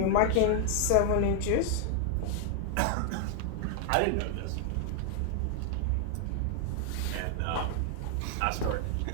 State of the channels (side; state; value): both; different; correlation 0.00